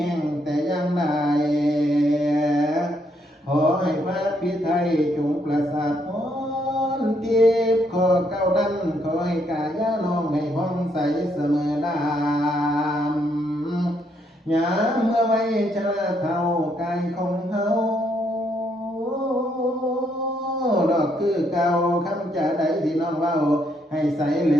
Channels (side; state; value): both; normal; correlation 0.73